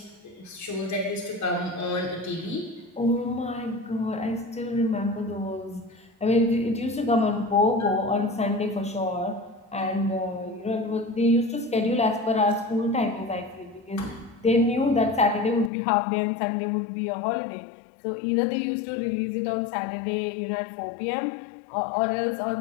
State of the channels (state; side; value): drops out; right; at 15.7 s